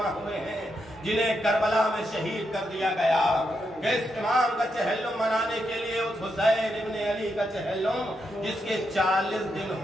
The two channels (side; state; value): both; normal; correlation 0.83